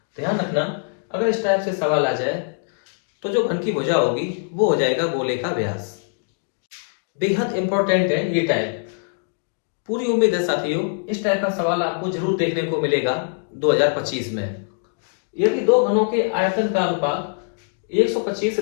ध्यान रखना, अगर इस टाइप से सवाल आ जाए तो जो घन की भुजा होगी वो हो जाएगा गोले का व्यास। बेहद इंपॉर्टेंट है ये टाइप। पूरी उम्मीद है साथियों इस टाइप का सवाल आपको जरूर देखने को मिलेगा 2025 में। यदि दो घनों के आयतन का अनुपात 125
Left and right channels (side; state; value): right; silent; digital silence